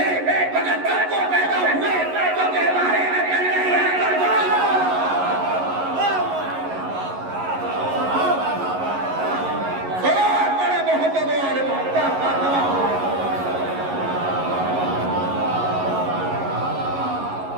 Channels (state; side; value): late; left; 11 ms